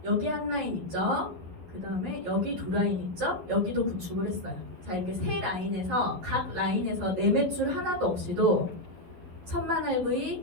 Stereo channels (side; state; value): left; late; 11 ms